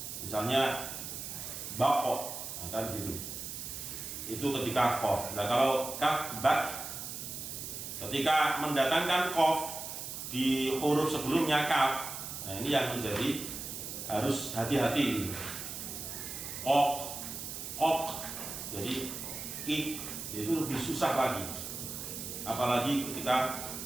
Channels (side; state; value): right; noise; hiss, 7 dB below the sound